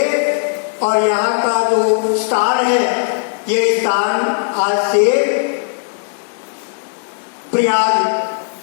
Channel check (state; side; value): silent; right; digital silence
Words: और यहाँ का जो स्थान है, ये स्थान आज से प्रयाग